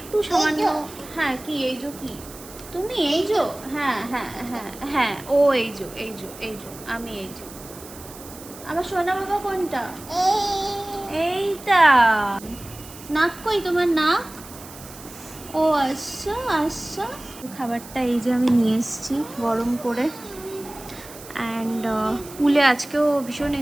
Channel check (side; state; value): right; noise; hiss, 17 dB below the sound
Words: সামান্য। হ্যাঁ কি এই যো, কি তুমি এই যো? হ্যাঁ হ্যাঁ হ্যাঁ হ্যাঁ, ও এই যো এই যো এই যো, আমি এই যো। আমার সোনা বাবা কোনটা? এইটা। নাক কই তোমার, নাক? ও আচ্ছা আচ্ছা। খাবারটা এই যে আমি নিয়ে এসেছি গরম করে। অ্যান্ড পুলে আজকেও ভীষণ